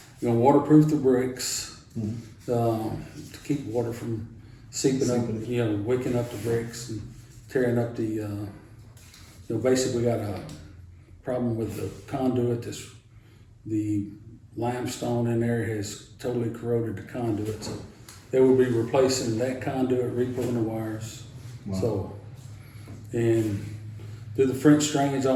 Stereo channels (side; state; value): both; identical; correlation 1.00